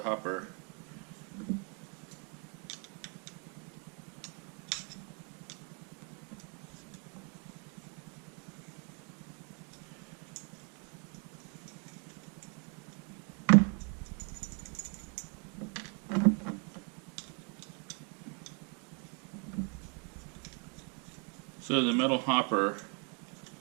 hopper. So the metal hopper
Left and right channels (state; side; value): quieter; left; 37.3 dB